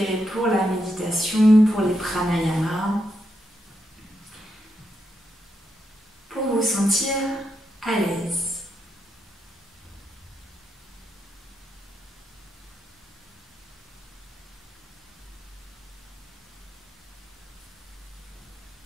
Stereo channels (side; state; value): both; normal; correlation 0.82